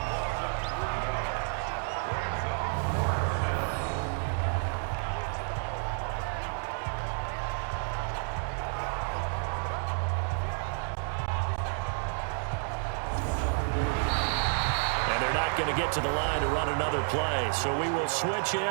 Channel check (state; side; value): silent; left; 58 dB below the other